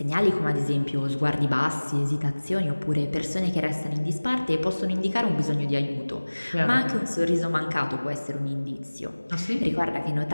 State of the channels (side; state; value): both; inverted; correlation -1.00